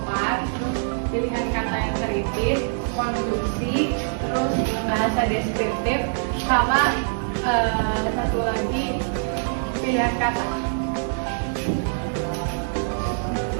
terus pilihan kata yang kritis, konstruksi, terus bahasa deskriptif, sama satu lagi pilihan kata.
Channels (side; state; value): left; silent; 63 dB below the other